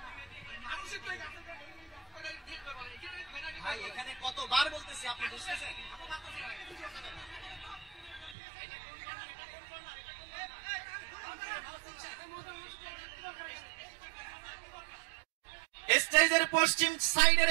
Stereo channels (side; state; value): left; drops out; at 8.3 s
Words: এখানে কতবার বলতেছি, আপনি বুঝতেছেন? স্টেজের পশ্চিম